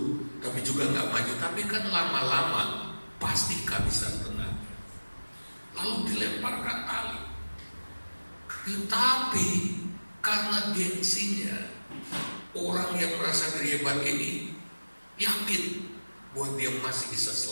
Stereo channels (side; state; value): both; inverted; correlation -1.00